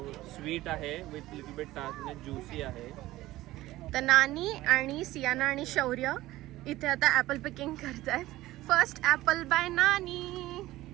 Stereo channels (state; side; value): quieter; left; 16.7 dB